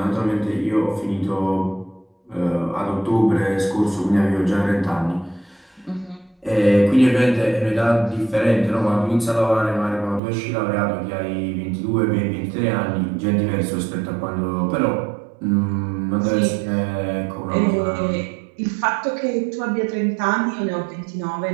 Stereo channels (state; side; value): drops out; left; at 10.2 s